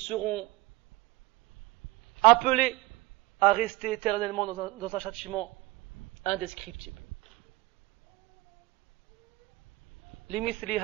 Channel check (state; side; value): quieter; left; 20.2 dB